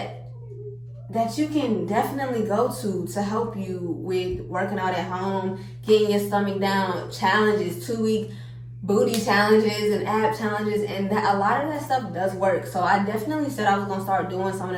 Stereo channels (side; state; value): both; identical; correlation 1.00